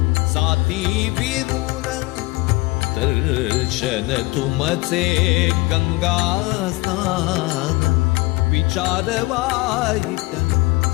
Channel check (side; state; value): right; quieter; 22.8 dB